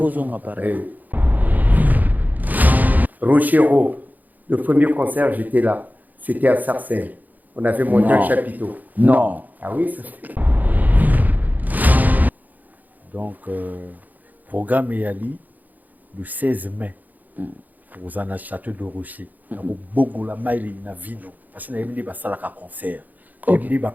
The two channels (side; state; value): left; late; 0.082 ms